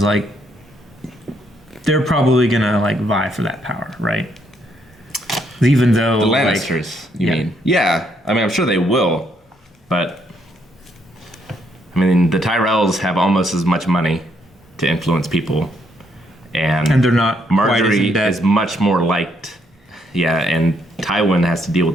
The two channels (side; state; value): both; normal; correlation 0.73